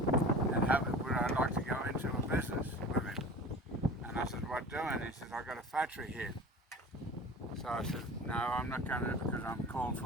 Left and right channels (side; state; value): both; normal; correlation 0.38